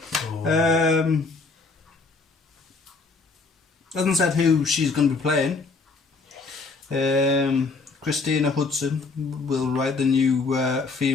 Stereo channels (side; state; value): right; quieter; 4.1 dB